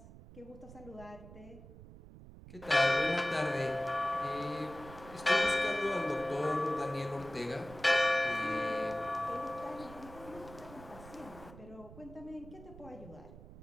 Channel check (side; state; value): right; noise; rumble, 17 dB below the sound